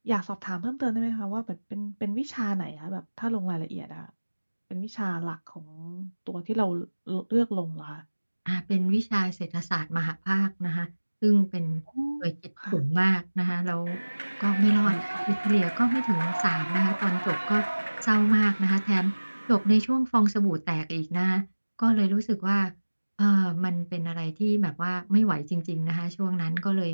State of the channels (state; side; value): inverted; both; correlation -1.00